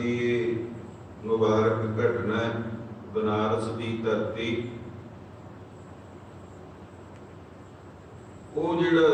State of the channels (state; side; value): identical; both; correlation 1.00